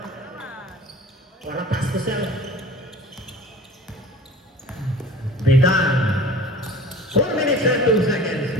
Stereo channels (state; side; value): normal; both; correlation 0.42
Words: Wala pass to self. Bitan. 4 minutes and 2 seconds.